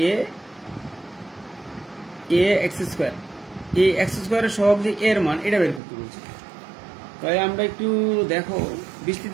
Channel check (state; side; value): drops out; left; at 5.8 s